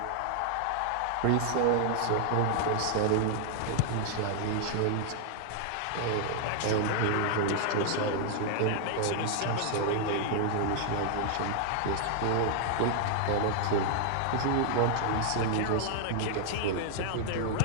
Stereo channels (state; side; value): different; both; correlation 0.00